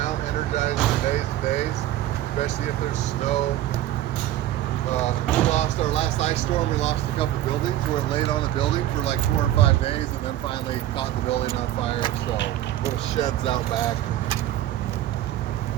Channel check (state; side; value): quieter; left; 13.3 dB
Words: energized for days and days, especially if there's snow. We lost our last ice storm. We lost a couple buildings where it laid on a building for like 4 or 5 days, and then finally caught the building on fire. So little sheds out back.